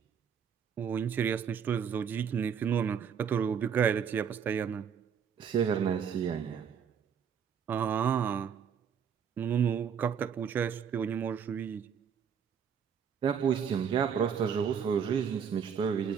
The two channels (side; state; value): left; quieter; 7.4 dB